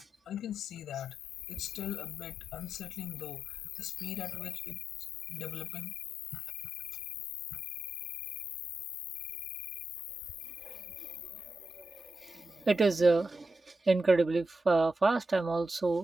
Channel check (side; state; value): both; normal; correlation 0.87